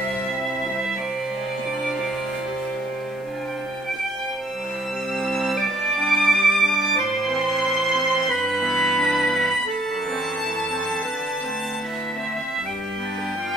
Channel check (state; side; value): normal; both; correlation 0.65